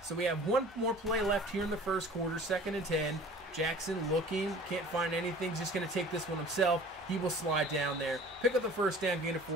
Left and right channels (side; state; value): both; normal; correlation 0.45